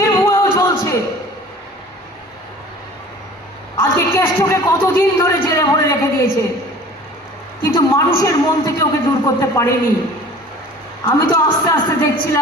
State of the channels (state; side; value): normal; both; correlation 0.45